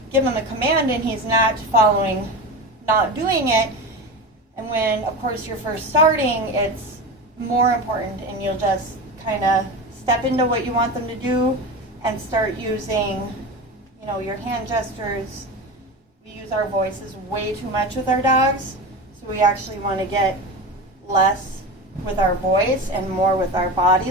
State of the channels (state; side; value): normal; both; correlation 0.26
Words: give him a command and he's not following, not doing it, and when, of course, you're first starting, it's more important, and you'll just kind of step into what you want them to do and start using, you know, your hand gestures. We use our voices way too much with our dogs, so we actually want to get less with our voice and more with our